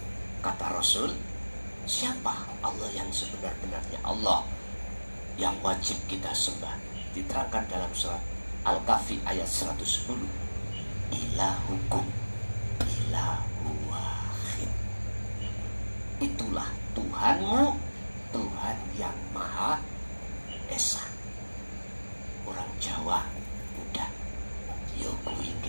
Kata Rasul, siapa Allah yang sebenar-benarnya Allah yang wajib kita sembah? Diterangkan dalam surat Al-Kahfi ayat 110. Ilahukum ilahu wahid. Itulah Tuhanmu, Tuhan yang Maha Esa. Orang Jawa udah yo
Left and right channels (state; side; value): inverted; both; correlation -1.00